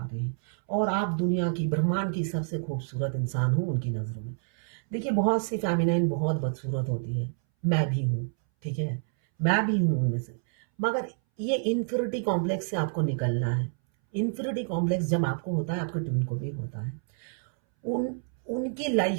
रहे हैं, और आप दुनिया की ब्रह्मांड की सबसे खूबसूरत इंसान हो उनकी नजरों में। देखिए बहुत सी फेमिनाइन बहुत बदसूरत होती है, मैं भी हूँ, ठीक है, मैं भी हूँ उनमें से, मगर ये इन्फिनिटी कॉम्प्लेक्स से आपको निकलना है। इन्फिनिटी कॉम्प्लेक्स जब आपको होता है, आपके ट्विन को भी होता है। उनकी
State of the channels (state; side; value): silent; left; 59 dB below the other